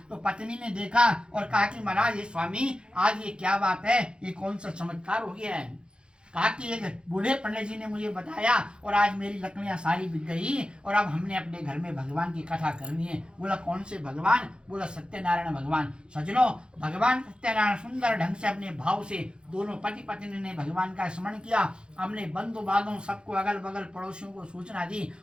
तो पत्नी ने देखा और कहा कि महाराज ये स्वामी, आज ये क्या बात है, ये कौन सा चमत्कार हो गया है। कहा कि एक बूढ़े पंडित जी ने मुझे बताया और आज मेरी लकड़ियां सारी बिक गई और अब हमने अपने घर में भगवान की कथा करनी है। बोला कौन से भगवान? बोला सत्यनारायण भगवान। सजनो, भगवान सत्यनारायण सुंदर ढंग से अपने भाव से दोनों पति पत्नी ने भगवान का स्मरण किया, अपने बंधु बांधों सबको, अगल बगल पड़ोसियों को सूचना दी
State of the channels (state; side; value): late; left; 0.052 ms